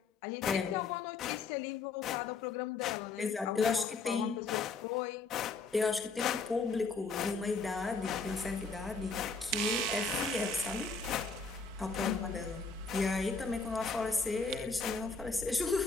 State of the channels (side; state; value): right; quieter; 4.2 dB